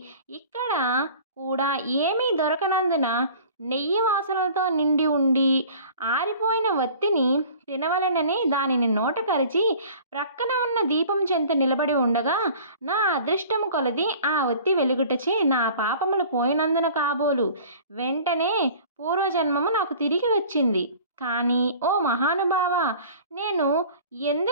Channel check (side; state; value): both; inverted; correlation -0.46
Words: ఇక్కడ కూడా ఏమీ దొరకనందున నెయ్యి వాసనలతో నిండి ఉండి ఆరిపోయిన ఒత్తిని తినవలెనని దానిని నోట కరిచి ప్రక్కన ఉన్న దీపం చెంత నిలబడి ఉండగా నా అదృష్టము కొలది ఆ ఒత్తి వెలుగుటచే నా పాపములు పోయినందున కాబోలు వెంటనే పూర్వజన్మము నాకు తిరిగి వచ్చింది. కానీ ఓ మహానుభావ, నేను